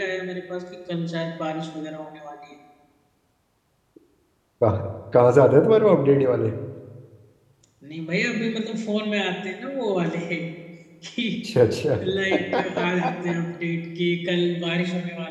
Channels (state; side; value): identical; both; correlation 1.00